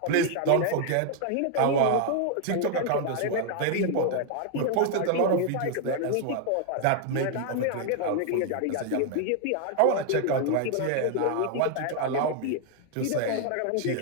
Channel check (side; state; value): both; different; correlation 0.00